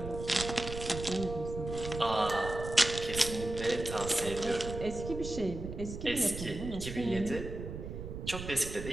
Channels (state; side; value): noise; right; rumble, 8 dB below the sound